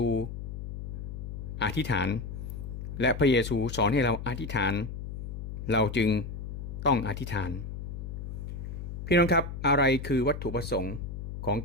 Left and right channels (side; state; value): left; noise; hum, 7 dB below the sound